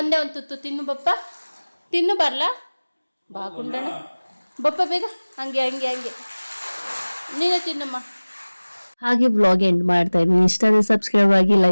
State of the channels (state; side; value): inverted; both; correlation -1.00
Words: ಒಂದು ತುತ್ತು ತಿನ್ನು ಬಪ್ಪ, ತಿನ್ನು ಬರ್ಲಾ ಬಾ ಗುಂಡಣ್ಣ ಬಪ್ಪ ಬೇಗ. ಹಂಗೆ ನೀನು ತಿನ್ನಮ್ಮ. ಹಾಗೆ ವ್ಲಾಗ್ ಎಂಡ್ ಮಾಡ್ತಾ ಇದ್ದೀನಿ. ಇಷ್ಟ ಆದರೆ ಸಬ್ಸ್ಕ್ರೈಬ್ ಆಗಿ,